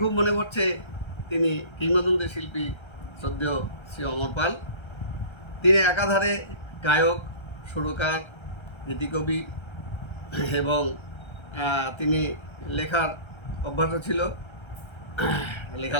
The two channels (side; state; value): right; late; 1.3 ms